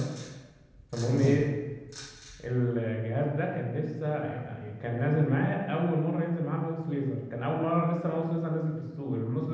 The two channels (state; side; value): identical; both; correlation 1.00